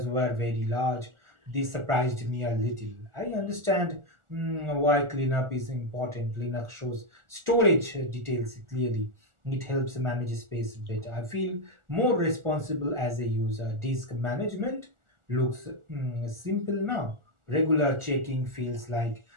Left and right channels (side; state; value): left; late; 1.4 ms